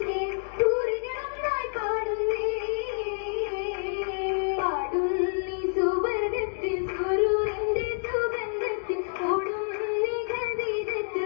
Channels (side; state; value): right; silent; digital silence